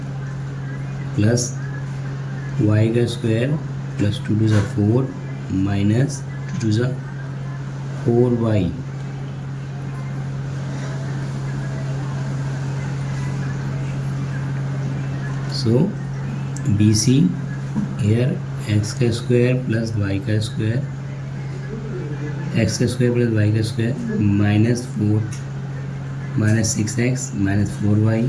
plus y का square plus 2 2 4 minus 2 2 4y so BC here x का स्क्वायर प्लस y का स्क्वायर एक्स का स्क्वायर प्लस वाई का square minus 4 minus 6x minus 4y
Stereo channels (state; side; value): identical; both; correlation 1.00